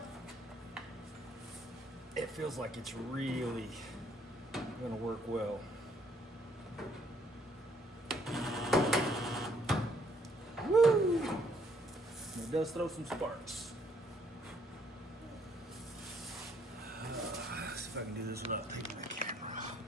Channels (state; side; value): normal; both; correlation 0.67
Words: feels like it's really gonna work well. Woo! It does throw some sparks. Let's see if I can do this without taking the camera off.